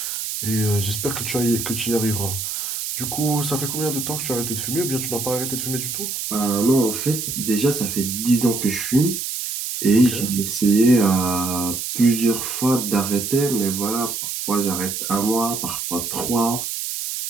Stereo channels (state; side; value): noise; right; hiss, 4 dB below the sound